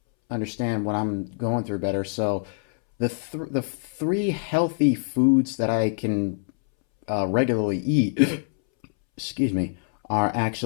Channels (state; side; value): silent; right; 62 dB below the other